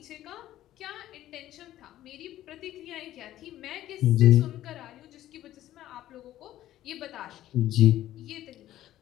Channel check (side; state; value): right; quieter; 13.6 dB